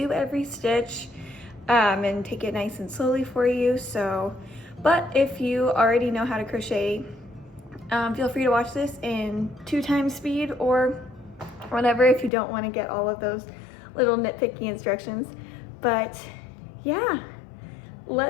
every stitch and take it nice and slowly for you. But if you already know how to crochet, feel free to watch this in 2 times speed or whatever if you don't want to get all of those little nitpicky instructions. But yeah,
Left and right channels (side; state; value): right; drops out; at 12.3 s